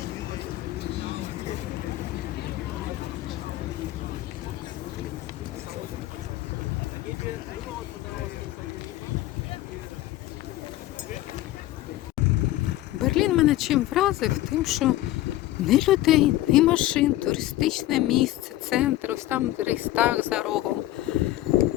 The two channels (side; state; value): right; quieter; 15.4 dB